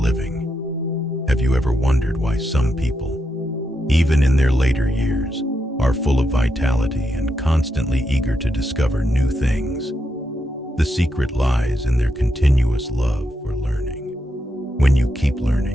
Have you ever wondered why some people, even in their later years, are full of vitality and constantly eager to discover new things? The secret lies in their continuous love for learning. When you keep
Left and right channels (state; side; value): normal; both; correlation 0.83